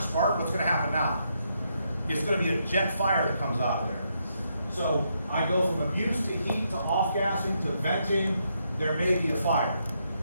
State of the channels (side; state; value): both; inverted; correlation -0.78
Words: what's going to happen now? It's going to be a jet fire that comes out of there. So I go from abuse to heat to off-gassing to venting, there may be a fire.